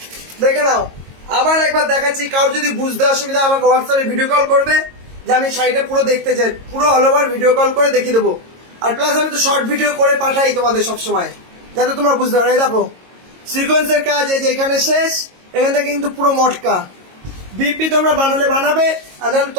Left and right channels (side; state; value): left; late; 22 ms